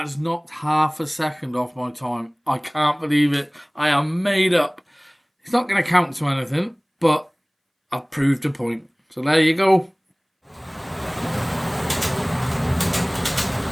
knocked half a second off my time. I can't believe it. I am made up. It's not going to count to anything, but I've proved a point. So there you go.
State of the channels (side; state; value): both; identical; correlation 1.00